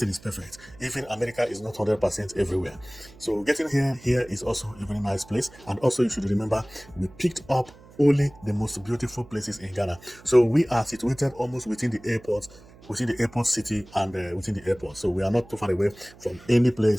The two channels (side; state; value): right; noise; hum, 23 dB below the sound